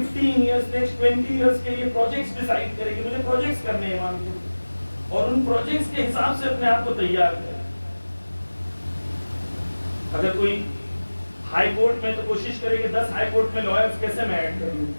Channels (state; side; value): inverted; both; correlation -1.00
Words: ایئرس، نیکسٹ 20 ایئرس کے لیے پروجیکٹس ڈیسائیڈ کرے کہ مجھے پروجیکٹس کرنے ہیں امام کے، اور ان پروجیکٹس کے حساب سے اپنے آپ کو تیار کرے. اگر کوئی ہائی کورٹ میں تو کوشش کرے کہ 10 ہائی کورٹ میں لائرز کیسے میں ایڈ کر لوں.